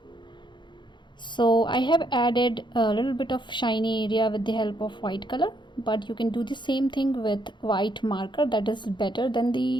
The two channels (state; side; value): late; right; 0.22 ms